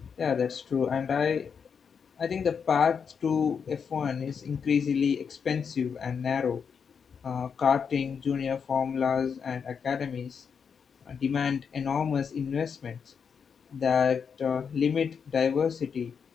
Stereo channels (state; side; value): quieter; right; 6.5 dB